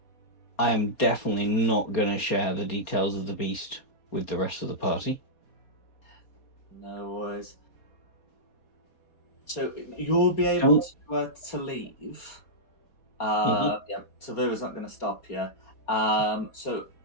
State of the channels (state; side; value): late; right; 4.2 ms